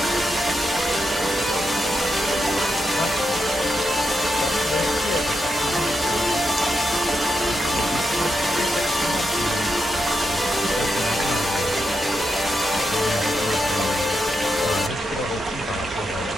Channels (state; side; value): normal; both; correlation 0.84